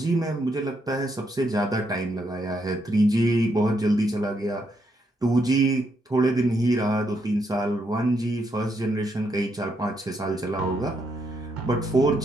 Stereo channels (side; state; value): both; normal; correlation 0.77